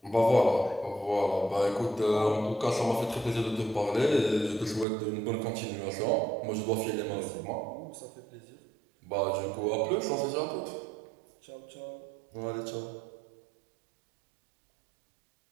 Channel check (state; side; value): drops out; left; at 4.9 s